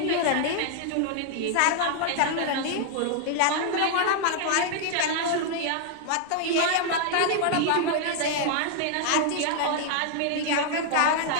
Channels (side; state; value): both; different; correlation 0.00